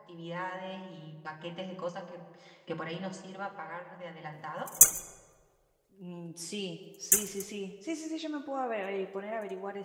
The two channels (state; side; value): identical; both; correlation 1.00